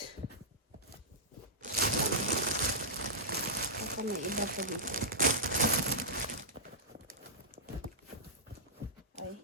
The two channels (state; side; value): normal; both; correlation -0.10